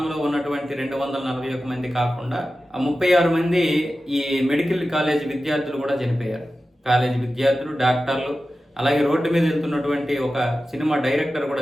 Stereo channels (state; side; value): normal; both; correlation 0.94